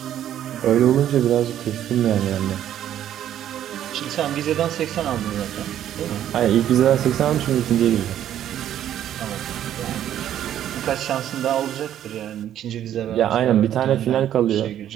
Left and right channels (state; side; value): quieter; left; 11.0 dB